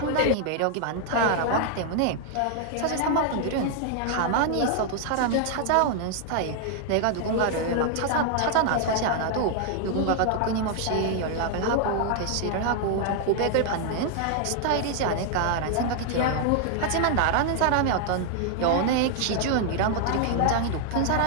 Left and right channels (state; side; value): different; both; correlation 0.00